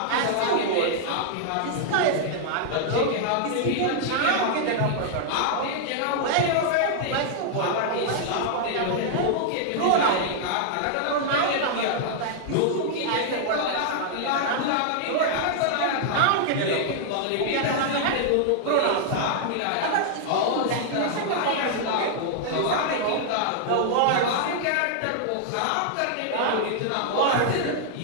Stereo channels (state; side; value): different; both; correlation -0.01